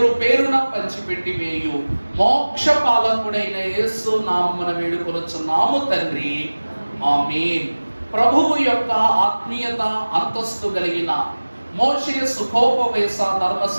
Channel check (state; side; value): inverted; both; correlation -1.00